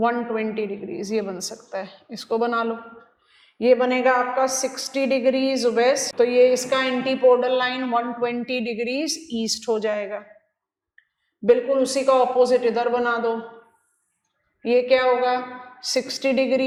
degrees. ये बन सकता है, इसको बना लो. ये बनेगा आपका 60 डिग्रीज वेस्ट. तो ये इसका एंटीपोडल लाइन 120 डिग्रीज ईस्ट हो जाएगा. बिल्कुल उसी का ऑपोजिट इधर बना दो. ये क्या होगा 60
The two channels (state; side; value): identical; both; correlation 1.00